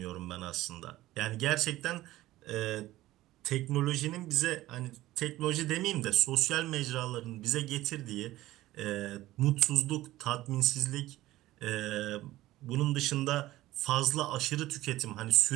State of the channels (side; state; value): left; quieter; 16.2 dB